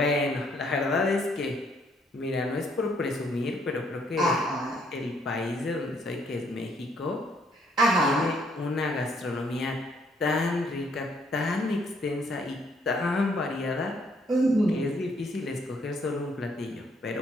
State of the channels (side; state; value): both; normal; correlation 0.68